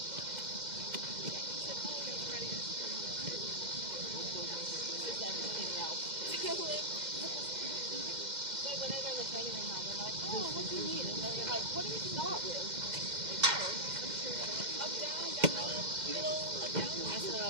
everything else. But when they're in the training room now, they're like, oh, what do you need? And they're like, what do we start with? Like, oh, up, down, middle, up, down. I said,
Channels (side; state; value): left; late; 2.1 ms